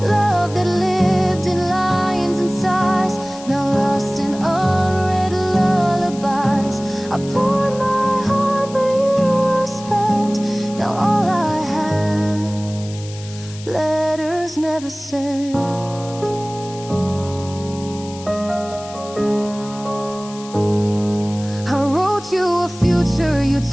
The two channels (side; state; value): left; noise; hiss, 17 dB below the sound